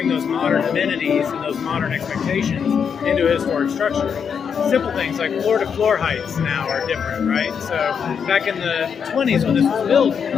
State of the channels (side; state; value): right; quieter; 6.9 dB